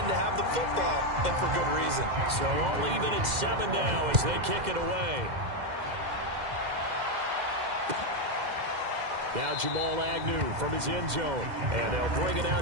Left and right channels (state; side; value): late; left; 2.1 ms